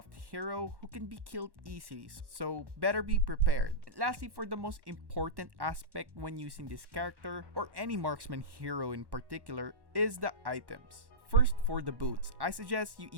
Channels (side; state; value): left; late; 1.1 ms